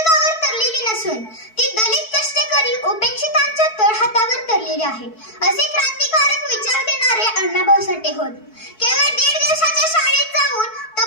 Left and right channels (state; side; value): late; right; 4.6 ms